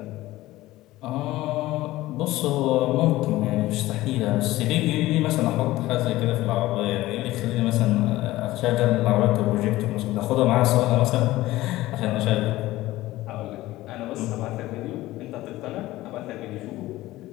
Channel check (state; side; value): quieter; right; 17.1 dB